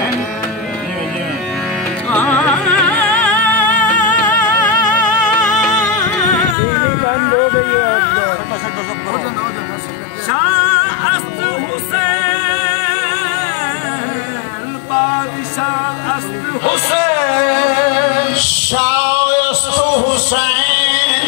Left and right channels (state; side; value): drops out; right; at 6.6 s